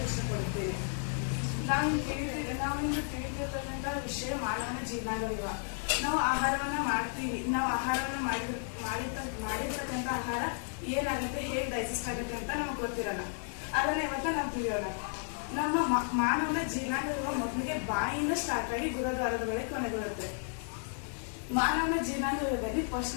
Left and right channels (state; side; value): silent; right; 56 dB below the other